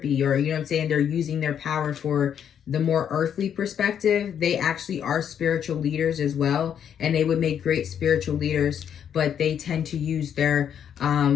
or, you know what I'm saying? They're using their power for the more earthly perspective. They actually are spiritual leaders as well, and they would make great spiritual leaders, but they tend to use their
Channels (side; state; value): right; quieter; 8.7 dB